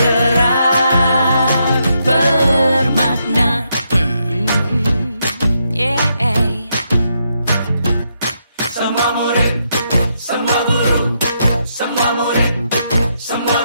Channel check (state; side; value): inverted; both; correlation -0.79